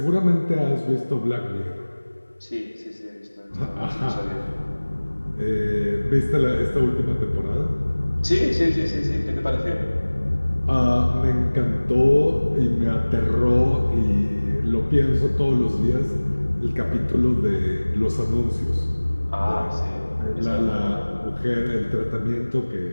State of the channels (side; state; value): both; inverted; correlation -1.00